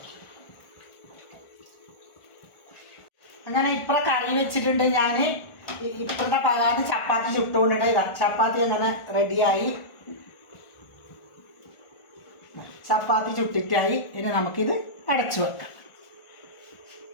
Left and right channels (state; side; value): late; right; 1.4 ms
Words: അങ്ങനെ ഇപ്പം കറി വെച്ചിട്ടുണ്ട് ഞാൻ. ഇപ്പോഴത്തെ പകാന് ചപ്പാത്തി ചുട്ടുകൊണ്ടിട്ട് ഇതാ ചപ്പാത്തി അങ്ങനെ റെഡിയായി. ചപ്പാത്തി ചുട്ടിട്ടായി. ഇനി നമുക്കിത് അടച്ചു വെക്കാം.